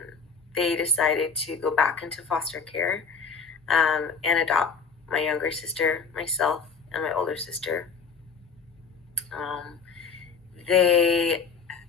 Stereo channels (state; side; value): quieter; right; 5.4 dB